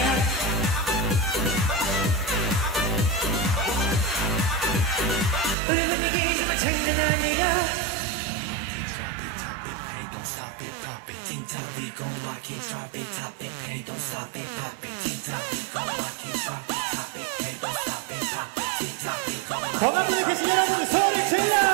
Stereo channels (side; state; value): left; drops out; at 5.6 s